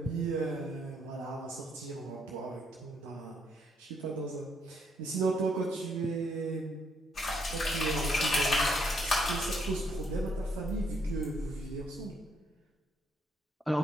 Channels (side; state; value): both; normal; correlation 0.72